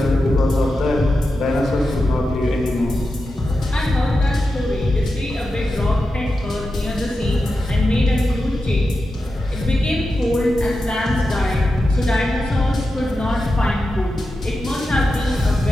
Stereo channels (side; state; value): both; normal; correlation 0.90